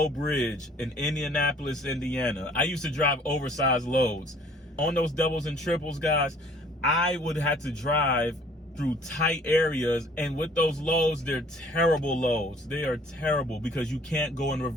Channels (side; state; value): both; normal; correlation 0.55